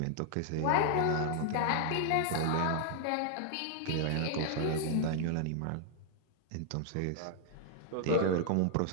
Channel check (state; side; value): different; both; correlation 0.00